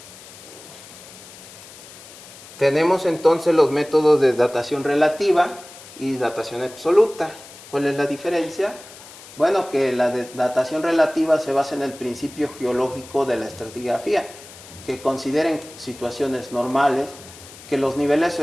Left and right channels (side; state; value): left; noise; hiss, 18 dB below the sound